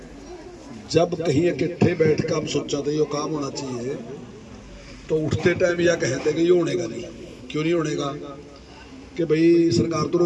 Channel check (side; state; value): both; identical; correlation 1.00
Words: जब कहीं इकट्ठे बैठ कर हम सोचा था ये काम होना चाहिए, तो उठते टाइम यह कहते कि ये होनेगा नहीं। क्यों नहीं होनेगा? कि भाई सरकार तो